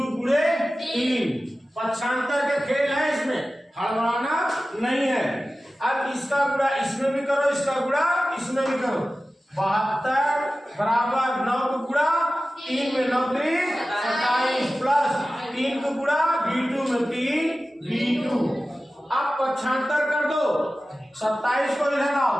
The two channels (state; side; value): normal; both; correlation 0.95